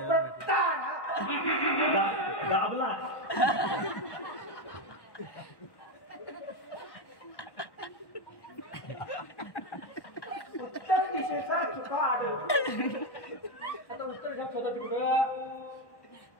तारा दाबला उत्तर दिशेचा चुका आढळ आता उत्तर घ्या स्वतः तिकडं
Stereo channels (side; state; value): right; late; 1.1 ms